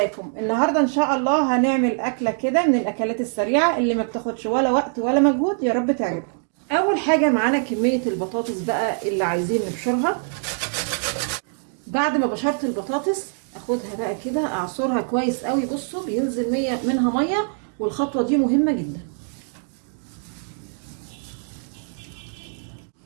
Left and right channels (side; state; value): left; silent; 60 dB below the other